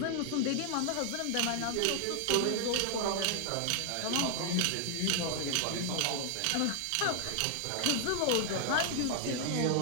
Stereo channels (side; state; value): both; different; correlation 0.00